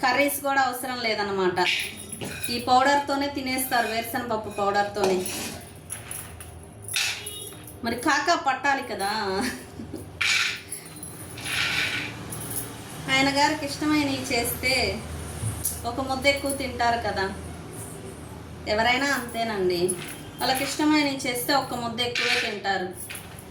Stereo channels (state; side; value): identical; both; correlation 1.00